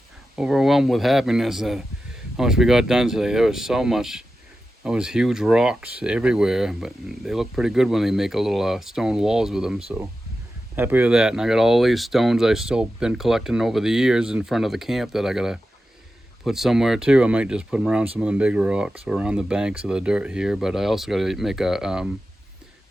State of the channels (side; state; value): both; normal; correlation 0.92